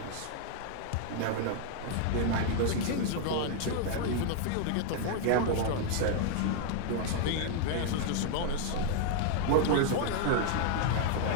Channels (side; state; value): both; different; correlation 0.00